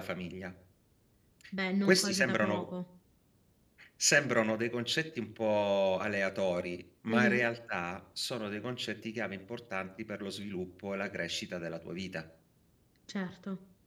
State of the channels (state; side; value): identical; both; correlation 1.00